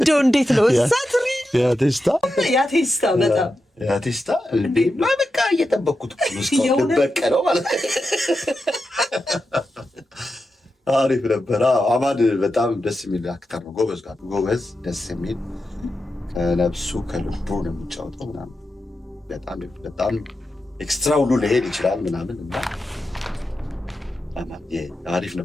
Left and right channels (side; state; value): both; normal; correlation 0.89